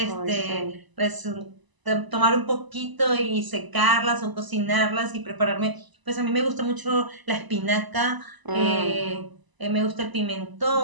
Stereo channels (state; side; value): late; left; 1.0 ms